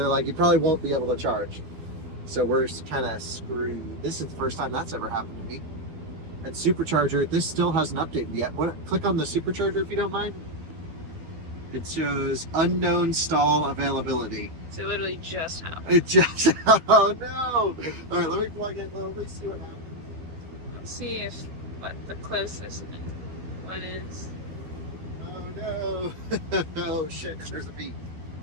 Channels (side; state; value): left; late; 12 ms